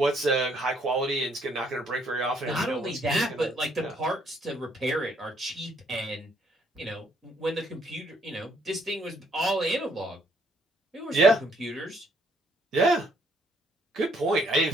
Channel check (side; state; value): both; normal; correlation 0.68